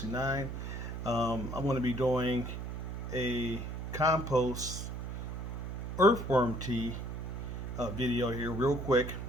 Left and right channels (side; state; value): right; noise; hum, 5 dB below the sound